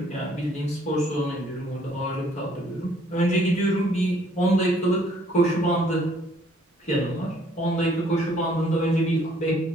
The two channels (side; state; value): both; normal; correlation 0.63